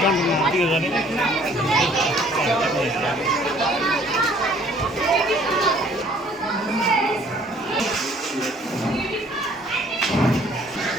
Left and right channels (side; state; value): both; normal; correlation 0.58